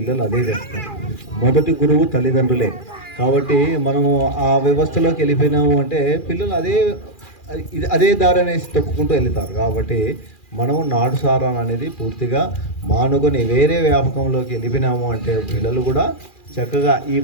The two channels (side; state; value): right; late; 2.4 ms